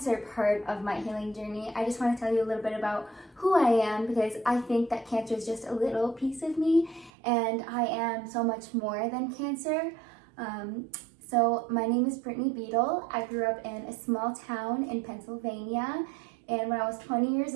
part of my healing journey, I just want to tell you a little bit about who I am, because I think that cancer is just a little piece of me, and I am so much more than cancer. So my name is Brittney Beadle. I grew up in a small town in Pennsylvania, and when I was 20 years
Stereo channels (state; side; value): drops out; left; at 7.1 s